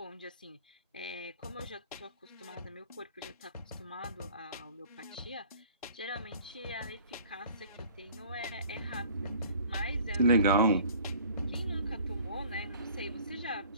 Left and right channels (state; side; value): inverted; both; correlation -0.50